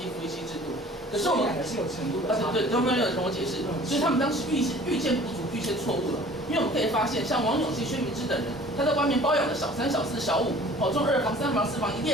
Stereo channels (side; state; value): both; normal; correlation 0.48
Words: 一夫一妻制度。可是我们是有程度的差别。对，都没有跟我解释，所以他们当时预见不足，预见错误了。因为我们可以发现，像王永庆、薛明之等人，他在外面包养了小3、小4、小5，中2房、3房、4房，一